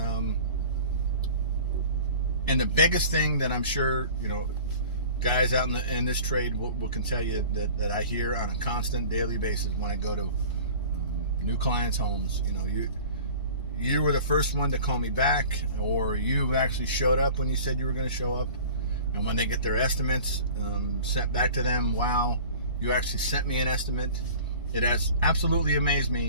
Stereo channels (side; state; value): both; inverted; correlation -0.43